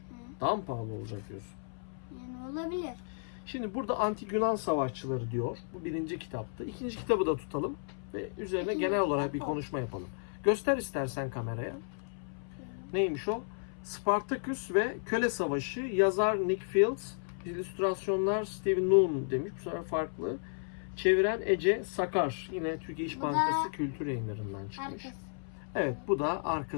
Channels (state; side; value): silent; right; 56 dB below the other